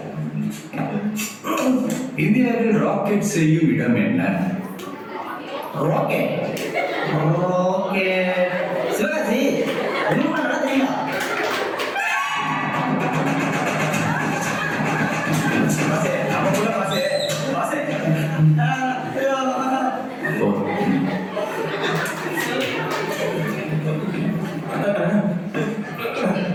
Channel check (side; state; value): both; identical; correlation 1.00